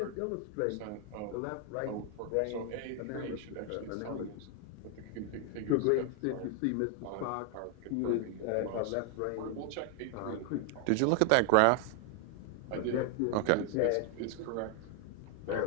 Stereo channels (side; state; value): both; different; correlation 0.00